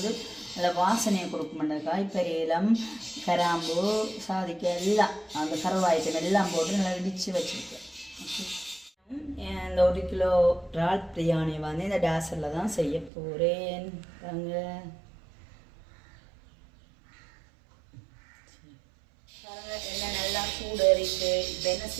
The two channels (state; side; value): drops out; left; at 13.1 s